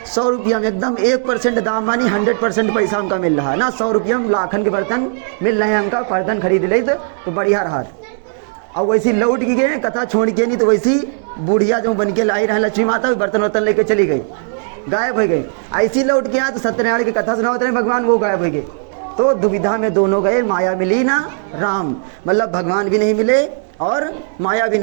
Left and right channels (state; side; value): silent; left; 68 dB below the other